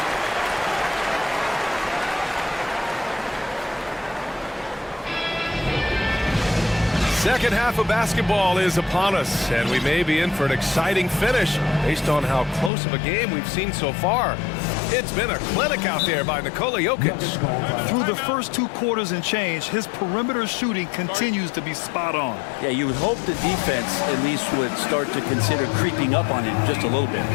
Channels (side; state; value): right; drops out; at 12.7 s